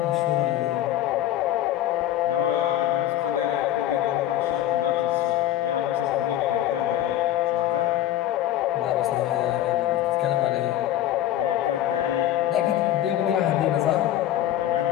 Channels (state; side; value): quieter; right; 12.9 dB